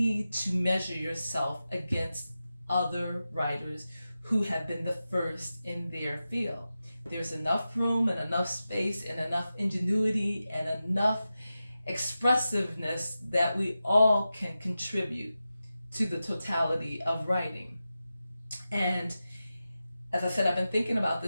to measure yourself against other writers who have been the first in their field. There's enough room and enough space and enough ingenuity and enough expressiveness that we all can contribute to the totality of writing. And as I said, I've been thinking about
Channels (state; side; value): inverted; both; correlation -0.93